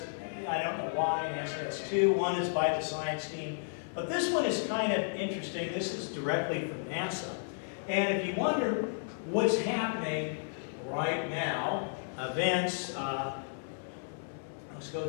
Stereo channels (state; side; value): silent; right; digital silence